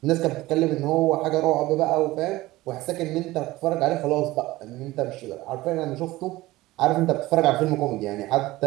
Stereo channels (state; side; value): quieter; left; 18.4 dB